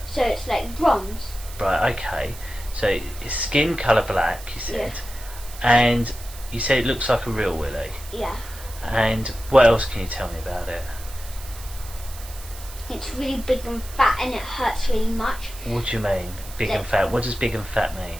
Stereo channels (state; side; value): noise; right; hiss, 16 dB below the sound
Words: So it's like bronze. Right. Okay. So it's skin colour black. You said. Yes. And you said it looks like a real Willie. Yeah. And what else can you tell me about it? It's really big and fat and it hurts really much. What do you mean? Big Like, and fat? What does big and fat mean?